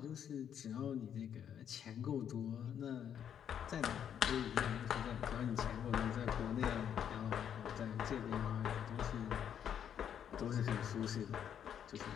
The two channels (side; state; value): right; quieter; 9.0 dB